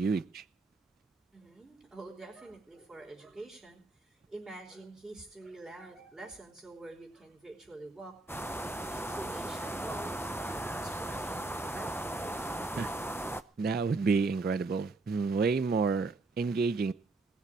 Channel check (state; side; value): quieter; left; 3.5 dB